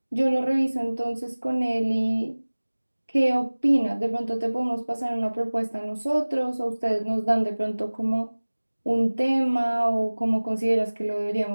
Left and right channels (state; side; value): inverted; both; correlation -1.00